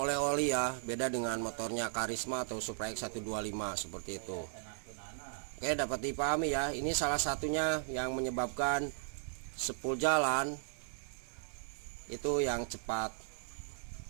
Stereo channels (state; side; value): silent; left; digital silence